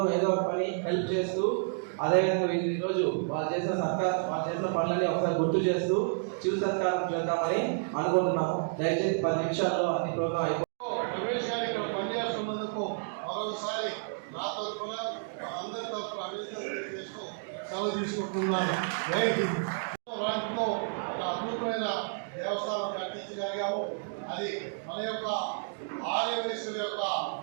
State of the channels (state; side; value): silent; left; digital silence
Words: ఏదో ఒక పని హెల్ప్ చేస్తూ, అదేవిధంగా ఈరోజు వాళ్ళు చేసిన పనులని ఒకసారి గుర్తు చేస్తూ చిరు సత్కారం చేద్దామని అనుకుంటున్నాము. దయచేసి 10 నిమిషాల్లో అన్ని ప్రోగ్రాం రమేష్ గారు ఇక్కడ పనిచేస్తున్నందుకు మరొకసారి నా తరఫున అందరి తరఫున అభినందనలు చేస్తూ సెలవు తీసుకుంటున్నాను. రాజుతో ఒక అద్భుతమైన దేవస్థానం కట్టించగలిగాము. అది మన యొక్క ఆర్యవైశ్యుల యొక్క